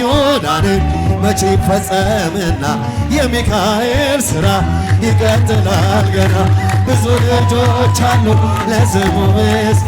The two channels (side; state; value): both; identical; correlation 1.00